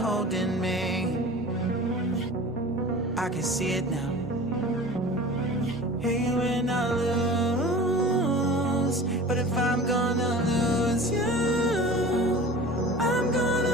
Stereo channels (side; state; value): both; normal; correlation 0.39